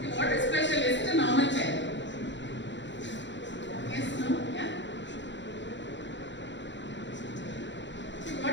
What is special? Is it a normal chair? Yes, no, yeah.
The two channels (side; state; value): right; late; 0.53 ms